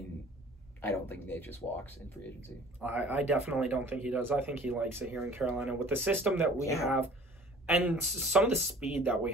I don't think Nate just walks in free agency. I definitely don't think he does. I think he likes it here in Carolina with the system that we have and some of the speed that we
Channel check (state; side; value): normal; both; correlation 0.48